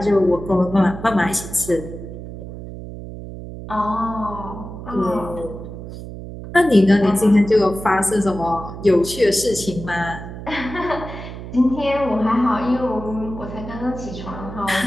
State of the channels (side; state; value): right; noise; hum, 11 dB below the sound